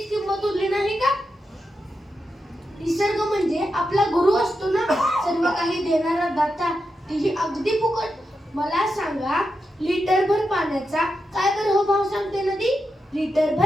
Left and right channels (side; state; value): both; normal; correlation 0.87